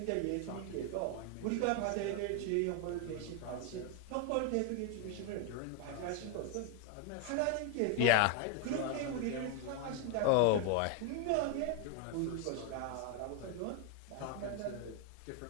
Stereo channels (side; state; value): both; different; correlation 0.01